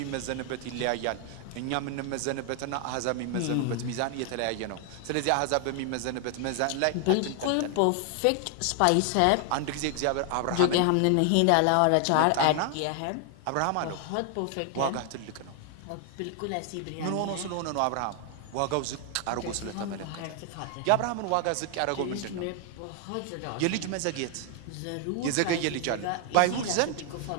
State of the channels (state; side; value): different; both; correlation 0.00